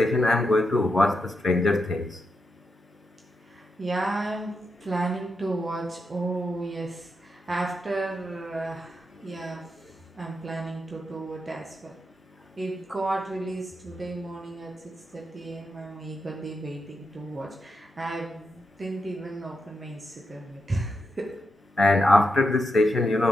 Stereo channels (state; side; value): normal; both; correlation 0.85